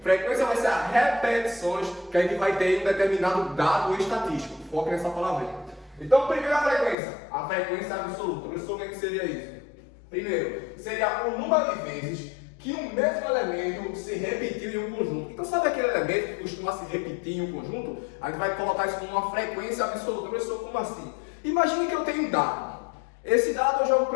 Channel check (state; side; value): drops out; right; at 7.0 s